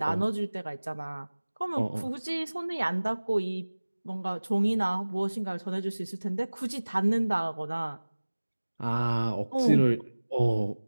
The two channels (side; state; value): both; inverted; correlation -1.00